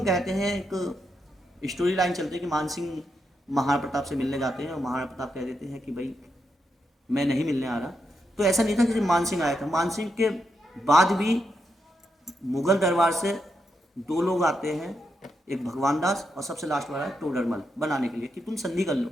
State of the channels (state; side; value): normal; both; correlation 0.83